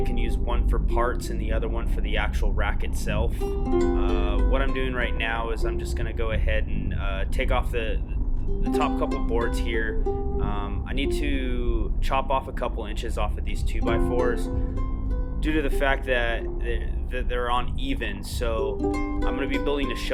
I can use one for parts and the other one for the actual rack itself. What I'm doing right now is I'm just going to go ahead and take off the top couple boards here. I need to chop off a couple inches off of these 2x4s due to the fact that they're uneven. So I'm going to be building a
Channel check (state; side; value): identical; both; correlation 1.00